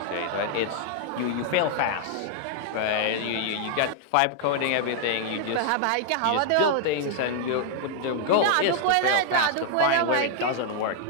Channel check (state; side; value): different; both; correlation 0.00